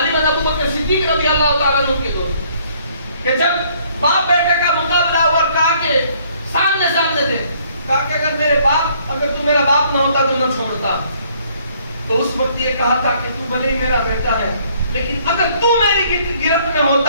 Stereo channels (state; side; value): inverted; both; correlation -0.63